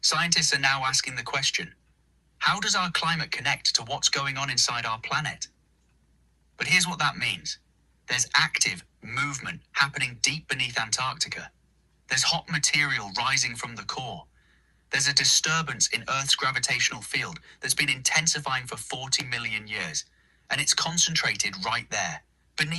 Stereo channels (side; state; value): both; identical; correlation 1.00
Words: Scientists are now asking the question, how does our climate connect to what's going on inside our planet? But here's what that means. There's active movement happening deep beneath Antarctica. There's hot material rising from the core. There's a disturbance in Earth's gravitational field that's been intensifying for 40 million years. And it's concentrated right there,